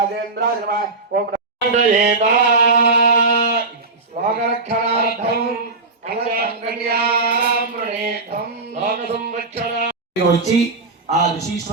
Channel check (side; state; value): left; quieter; 3.6 dB